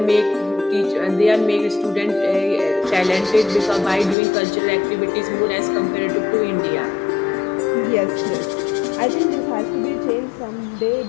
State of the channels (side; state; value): right; drops out; at 4.2 s